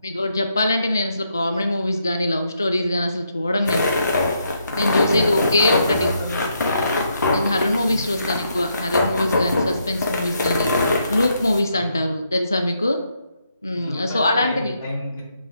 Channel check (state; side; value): inverted; both; correlation -0.77